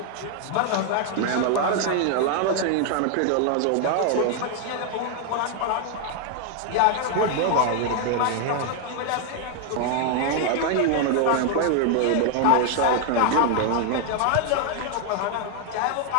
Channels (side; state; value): both; different; correlation 0.00